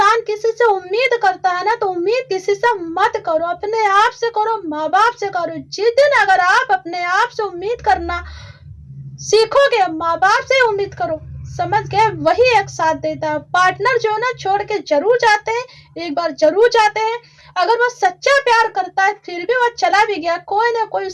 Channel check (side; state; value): both; identical; correlation 1.00